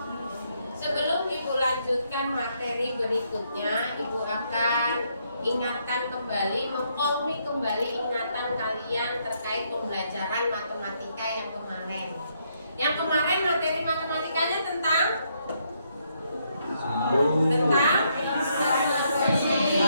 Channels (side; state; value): both; inverted; correlation -0.74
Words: Sebelum Ibu lanjutkan materi berikutnya, Ibu akan ingatkan kembali, mengkomi kembali ingatan kalian terkait pembelajaran matematika yang kemarin. Yang kemarin materi matematikanya tentang